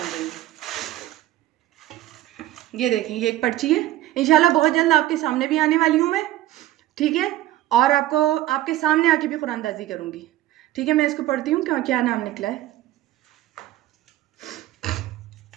रही। ये देखें, ये एक पर्ची है, इंशाल्लाह बहुत जल्द आपके सामने भी आने वाली हूँ मैं। ठीक है, और आपको आपके सामने आके भी कुरानंदाजी करूँगी। ठीक है, मैं इसको पढ़ती हूँ, क्या नाम निकला है।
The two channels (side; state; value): left; quieter; 14.9 dB